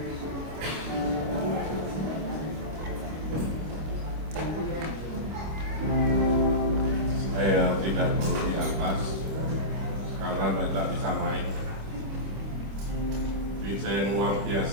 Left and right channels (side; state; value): left; late; 26 ms